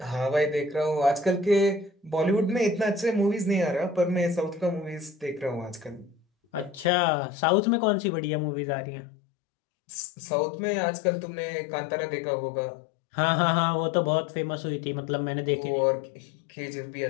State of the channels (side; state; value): right; drops out; at 6.9 s